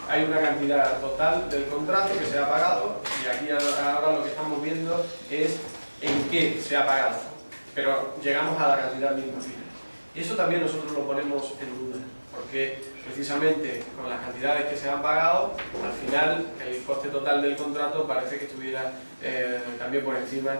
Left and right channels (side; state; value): both; inverted; correlation -1.00